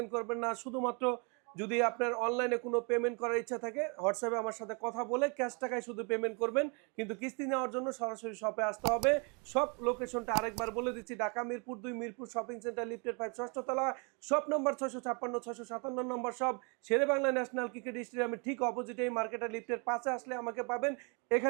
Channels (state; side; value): quieter; left; 34.3 dB